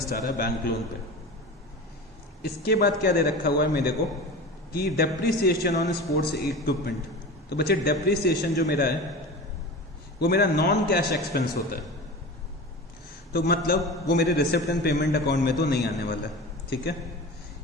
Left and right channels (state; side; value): normal; both; correlation 0.32